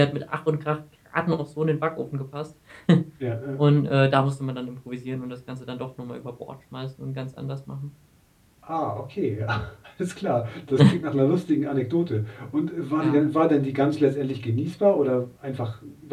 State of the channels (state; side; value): identical; both; correlation 1.00